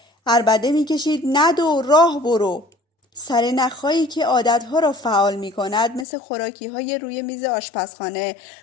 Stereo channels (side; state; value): right; drops out; at 6.1 s